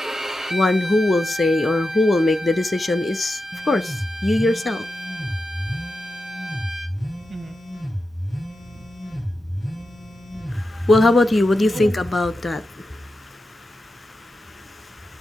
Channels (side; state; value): both; normal; correlation 0.90